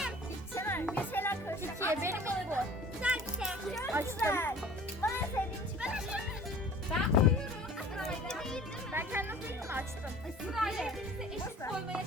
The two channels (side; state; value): both; normal; correlation 0.45